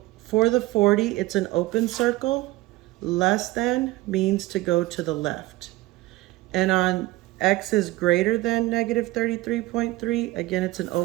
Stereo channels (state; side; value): quieter; left; 18.7 dB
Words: for the 40, it's an open circle. Less than means to go to the left. And on x is greater than -33.3, again, it's an